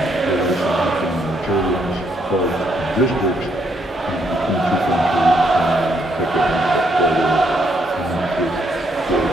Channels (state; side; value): normal; both; correlation 0.74